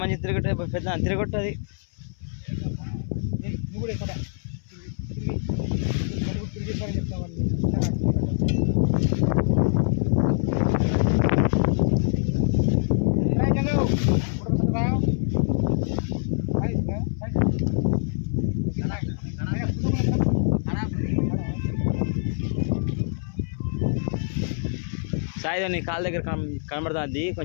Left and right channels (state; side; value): silent; right; 62 dB below the other